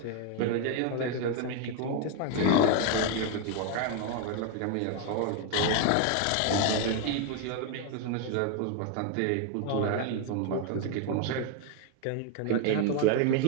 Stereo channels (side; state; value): both; different; correlation 0.01